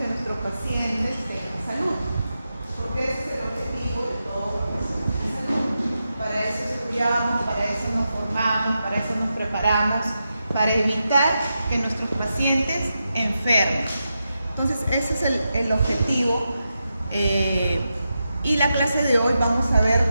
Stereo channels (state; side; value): inverted; both; correlation -0.88